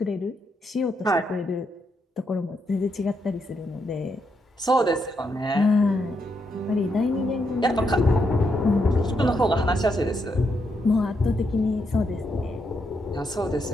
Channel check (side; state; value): both; normal; correlation 0.80